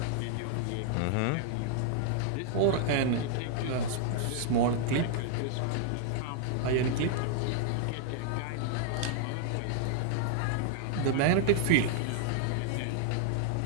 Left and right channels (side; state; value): both; different; correlation 0.00